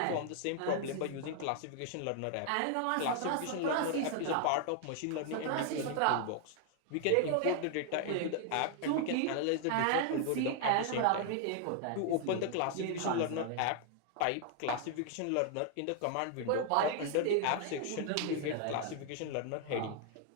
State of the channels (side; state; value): both; different; correlation 0.00